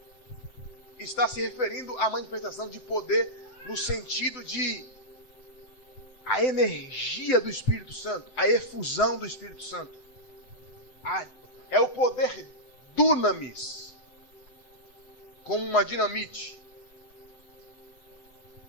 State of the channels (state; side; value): late; right; 7.8 ms